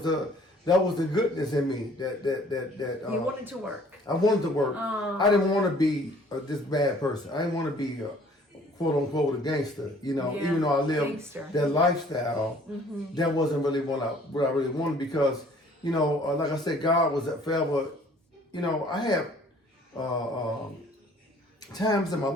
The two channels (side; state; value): both; normal; correlation 0.56